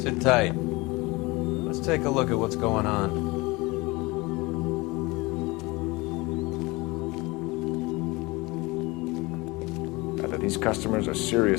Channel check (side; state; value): right; quieter; 23.7 dB